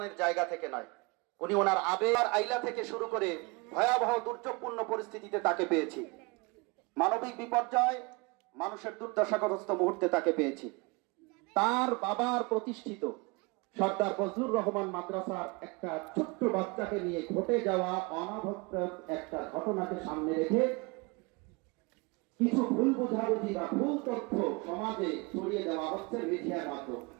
জায়গা থেকে নয়, উনি ওনার আবেগ আইলা থেকে শুরু করে ভয়াবহ দুর্যোগপূর্ণ পরিস্থিতিতে তাকে পেয়েছি, মানবিক বিপর্যয়, মানুষের দুর্দশাগ্রস্ত মুহূর্তে তাকে পেয়েছি। তার বাবার প্রতিষ্ঠিত সর্দার ফজলুর রহমান মাদ্রাসার একটা ছোট্ট বাচ্চাকে নিয়ে ঘটে যাওয়া অনাভক্ত একটা ঘটনাকে সামনে রেখে কিছু ভুল বোঝাবুঝি বা ভুল তথ্য সমাজে ছড়িয়ে দেওয়া হচ্ছে মিডিয়ার মাধ্যমে।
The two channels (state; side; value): quieter; left; 27.7 dB